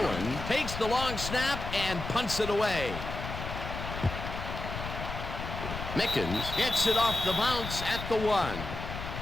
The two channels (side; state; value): left; noise; rumble, 7 dB below the sound